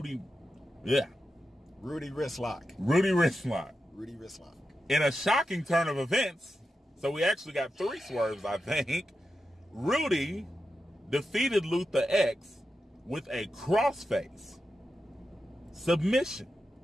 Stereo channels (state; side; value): normal; both; correlation 0.90